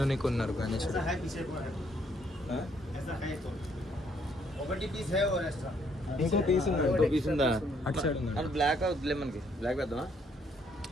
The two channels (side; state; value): both; normal; correlation 0.68